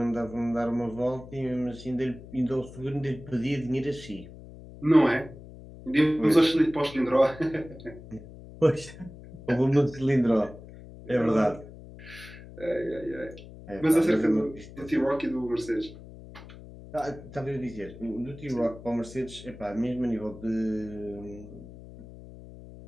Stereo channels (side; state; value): left; noise; hum, 16 dB below the sound